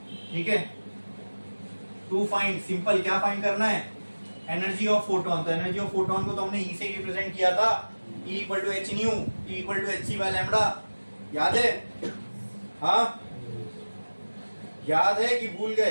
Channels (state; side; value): inverted; both; correlation -1.00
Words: ठीक है। टू फाइंड, सिंपल क्या फाइंड करना है, एनर्जी ऑफ फोटोन। तो एनर्जी ऑफ फोटोन को तो हमने ई से रिप्रेजेंट किया था, E equal to H nu, T equal to H C by lambda, याद है, हाँ याद है कि भूल